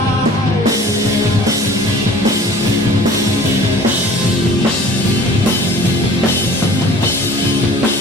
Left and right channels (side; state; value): both; normal; correlation 0.47